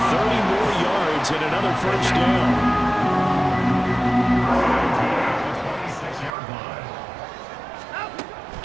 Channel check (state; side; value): drops out; left; at 6.4 s